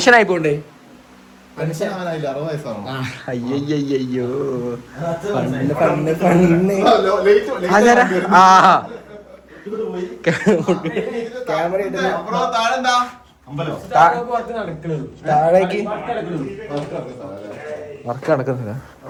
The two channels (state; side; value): identical; both; correlation 1.00